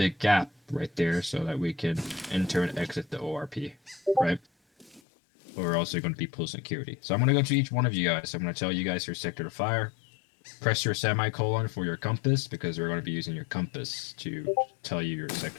gap right there so that we can enter and exit the ORP, right? But we're also going to be pull security. So I'm going to go to each one of you guys. I'm going to tell you guys your sector to fire. Press your semicolon for your compass because we're going to be using your compass to tell you your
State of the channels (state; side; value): drops out; right; at 5.0 s